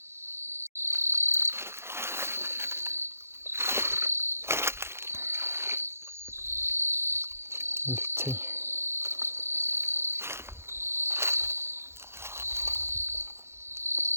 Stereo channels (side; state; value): left; late; 0.12 ms